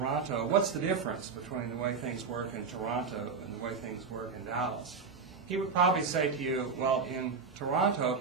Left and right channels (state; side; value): quieter; left; 5.2 dB